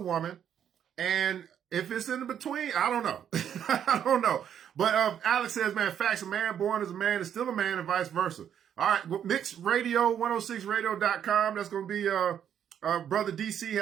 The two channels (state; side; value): quieter; left; 9.2 dB